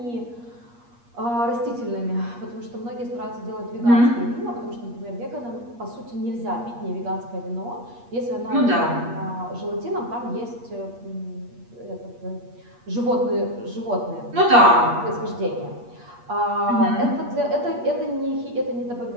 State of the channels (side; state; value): left; late; 8.4 ms